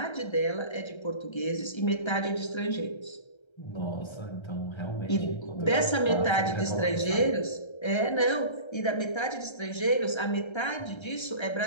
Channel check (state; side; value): late; right; 1.3 ms